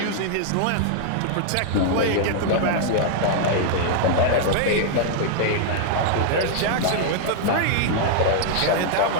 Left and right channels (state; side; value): different; both; correlation -0.01